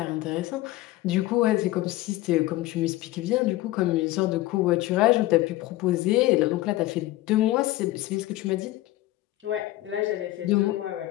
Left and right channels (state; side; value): quieter; right; 17.1 dB